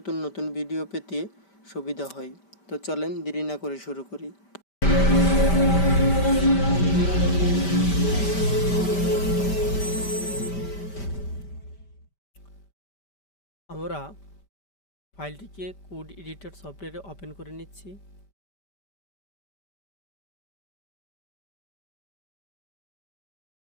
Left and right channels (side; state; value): right; late; 5.1 ms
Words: নতুন ভিডিও পেতে সুবিধা হয়। তো চলেন দেরি না করে শুরু করি। আমরা ফাইলটিকে কোড এডিটর সফটওয়্যারে ওপেন করে নিচ্ছি।